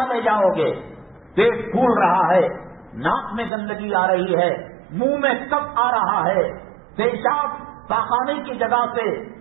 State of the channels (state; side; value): drops out; left; at 3.5 s